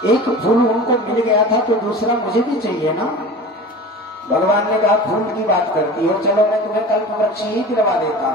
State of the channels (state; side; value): normal; both; correlation 0.36